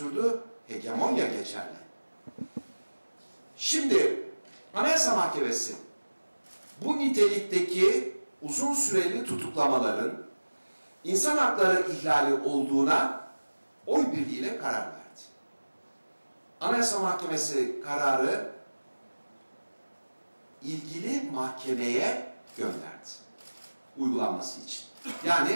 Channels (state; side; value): inverted; both; correlation -1.00